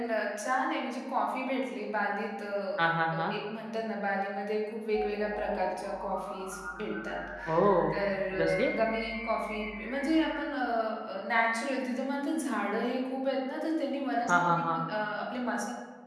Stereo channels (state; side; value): identical; both; correlation 1.00